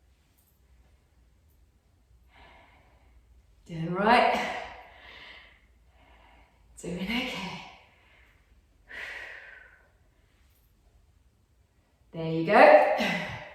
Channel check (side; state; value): both; identical; correlation 1.00